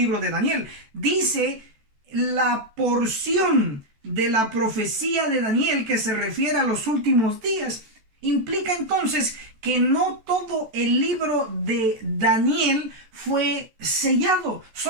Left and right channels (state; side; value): late; left; 14 ms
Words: de Daniel. Dice la porción de la profecía de Daniel que se refiere a los últimos días. Implica entonces que no todo el libro de Daniel fue sellado,